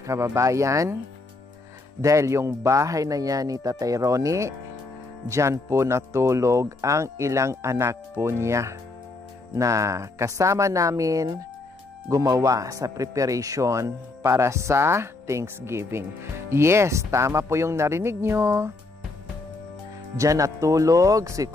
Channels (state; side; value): quieter; right; 3.3 dB